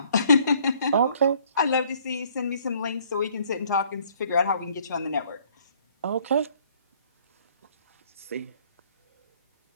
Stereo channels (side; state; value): both; inverted; correlation -0.61